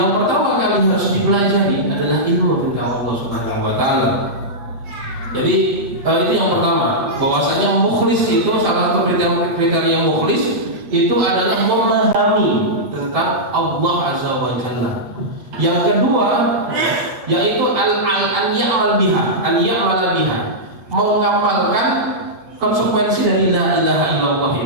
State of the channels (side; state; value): left; late; 7.8 ms